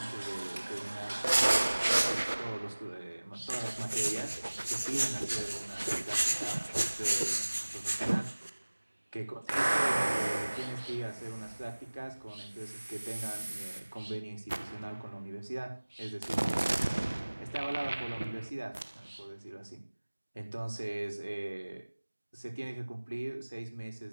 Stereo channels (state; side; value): inverted; both; correlation -1.00